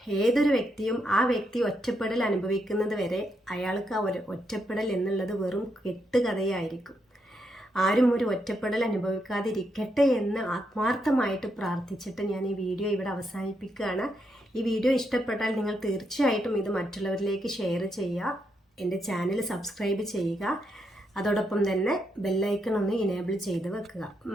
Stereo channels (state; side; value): normal; both; correlation 0.80